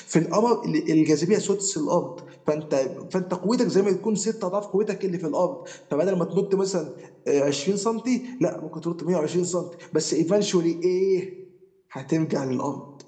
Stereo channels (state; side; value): identical; both; correlation 1.00